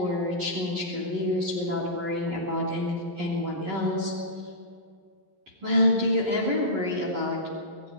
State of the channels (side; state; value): left; late; 11 ms